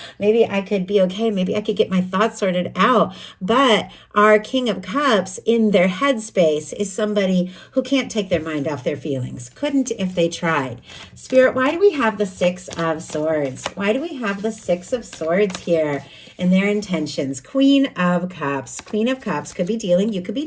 maybe I could be okay. Maybe I could get my thoughts sorted out. But our King of Cups in their headspace is somebody who can't take their mind off their feelings. Couldn't if they tried. Spirit, why do we have the Six of Swords? Why do we have the Six of Swords here in their intentions? Queen of Cups. Queen of Cups could be dealing, you could be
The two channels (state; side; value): identical; both; correlation 1.00